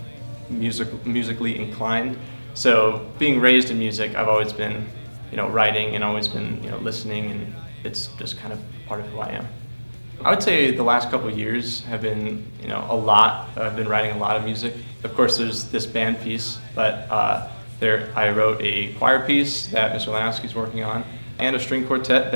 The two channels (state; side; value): inverted; both; correlation -1.00